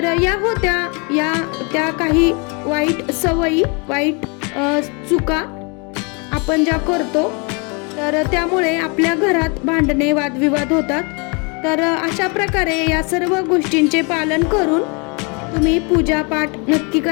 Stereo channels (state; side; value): quieter; right; 32.7 dB